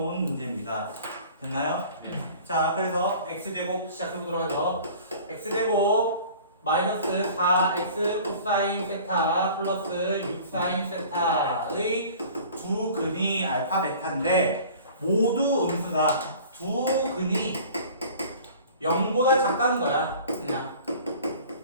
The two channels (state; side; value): inverted; both; correlation -0.45